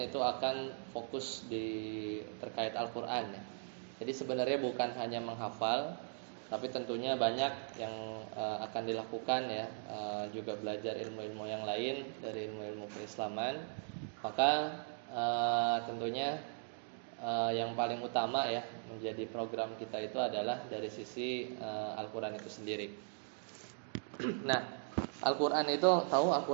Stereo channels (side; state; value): left; silent; digital silence